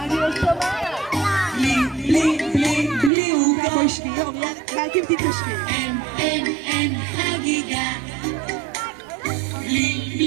לא שומעת. בלי עוגה. בואי שנייה, רק אם תתיישבי. אין חגיגה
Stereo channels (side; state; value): left; drops out; at 3.1 s